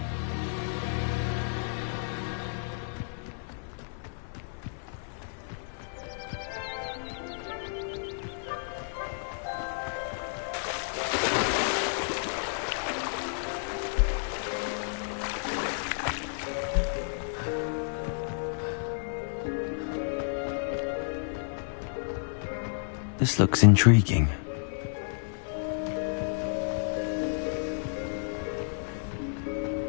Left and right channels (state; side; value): silent; right; 57 dB below the other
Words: This looks intriguing.